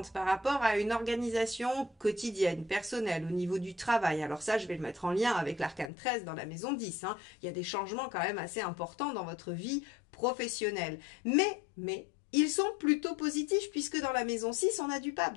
par rapport à une organisation quotidienne, personnelle, au niveau du travail, alors ça, je vais le mettre en lien avec l'arcane 13 dans la maison 10. Hein, il y a des changements quand même assez importants dans votre vie professionnelle. Mais ils sont plutôt positifs puisque dans la maison 6, on a du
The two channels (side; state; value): right; drops out; at 5.9 s